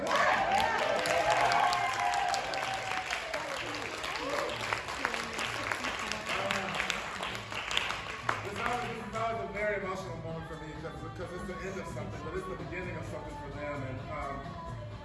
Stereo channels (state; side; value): identical; both; correlation 1.00